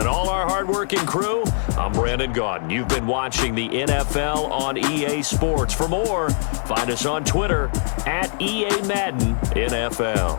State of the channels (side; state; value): right; silent; digital silence